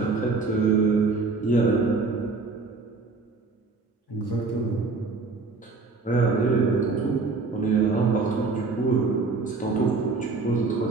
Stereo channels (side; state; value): left; quieter; 4.0 dB